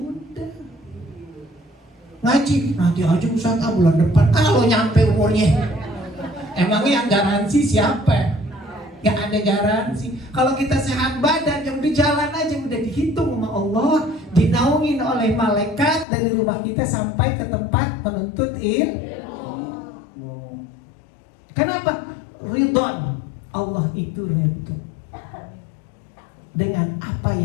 Ngaji nanti aja Ustaz, bulan depan kalau nyampe umurnya. Emangnya yang garansi siapa? Gak ada garansi. Kalau kita sehat badan, yang udah jalan aja, udah dihitung sama Allah, dinaungin oleh malaikat dari rumah kita sampai ke tempat menuntut ilmu. Kenapa? Ridwan. Allah itu ridho dengan apa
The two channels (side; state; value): right; drops out; at 16.1 s